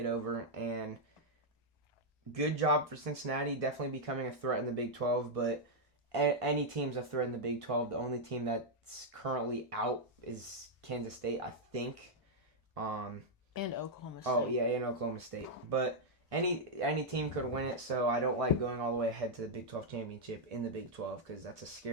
over, and good job for Cincinnati, definitely becoming a threat in the Big 12, but any team's a threat in the Big 12. The only team that's currently out is Kansas State, I think. And Oklahoma State. Oh, yeah, and Oklahoma State. But any team could win it, so I don't like going all the way ahead to the Big 12 championship in the Big 12 because that's a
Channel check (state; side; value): normal; both; correlation -0.03